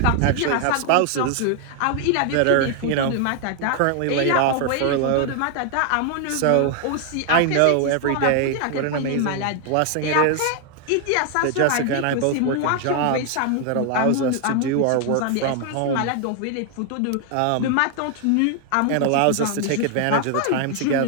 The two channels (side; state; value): both; different; correlation 0.00